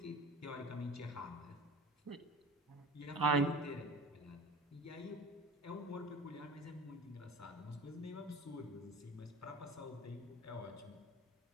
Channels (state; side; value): normal; both; correlation 0.39